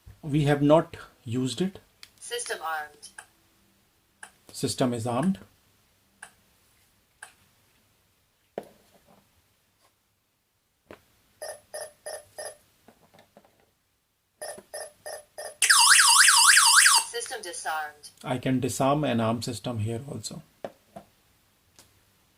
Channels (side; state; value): both; identical; correlation 1.00